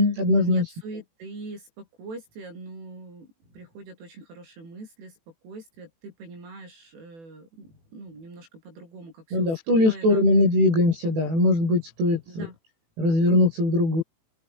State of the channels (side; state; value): left; late; 18 ms